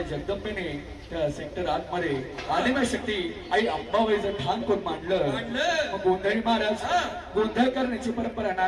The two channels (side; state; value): both; identical; correlation 1.00